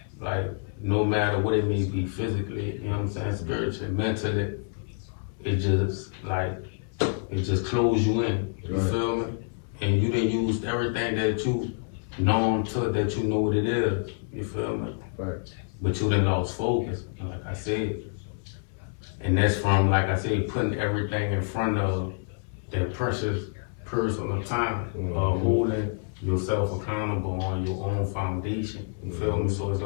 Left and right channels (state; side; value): silent; right; 60 dB below the other